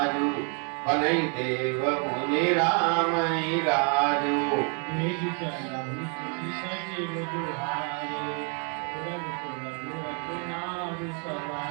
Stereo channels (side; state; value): left; quieter; 38.9 dB